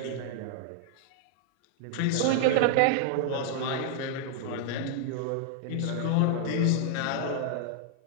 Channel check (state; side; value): different; both; correlation 0.00